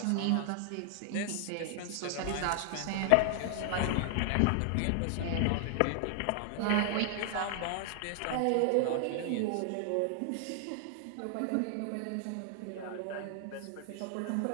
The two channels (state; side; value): different; both; correlation 0.00